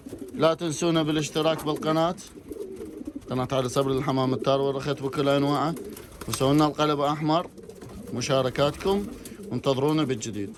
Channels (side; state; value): both; identical; correlation 1.00